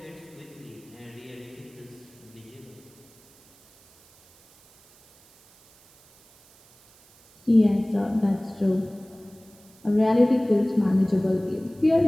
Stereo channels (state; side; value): noise; right; hiss, 28 dB below the sound